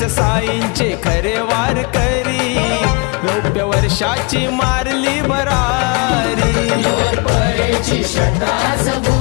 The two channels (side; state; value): right; quieter; 30.6 dB